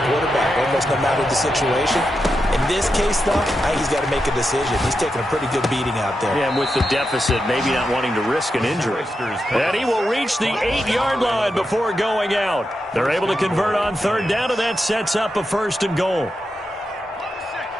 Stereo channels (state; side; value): normal; both; correlation 0.87